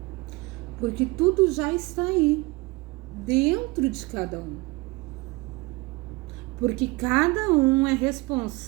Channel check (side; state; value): left; quieter; 23.8 dB